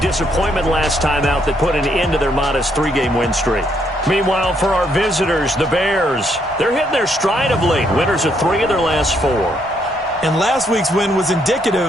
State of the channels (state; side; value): normal; both; correlation 0.73